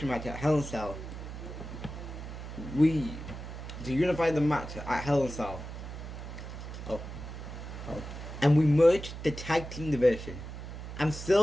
match at Hell in a Cell. To unify the match at Hell in a Cell. And we merge the tag team division. I'm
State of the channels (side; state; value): right; noise; hum, 9 dB below the sound